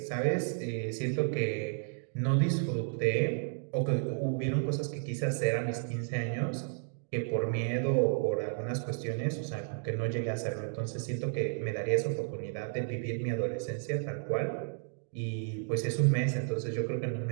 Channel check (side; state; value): left; silent; digital silence